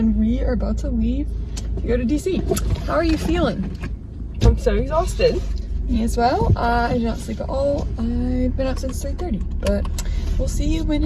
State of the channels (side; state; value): both; identical; correlation 1.00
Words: we are about to leave to go to DC. How are you feeling? I'm so exhausted. Me as well. I did not sleep at all. I've been up since 3:30, but we'll see you when